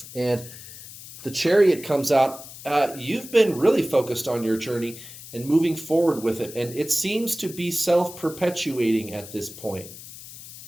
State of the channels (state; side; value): noise; left; hiss, 15 dB below the sound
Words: And the Chariot comes out. You've been really focused on your journey and moving forward with it. And it seems to be self-perpetuating at this point.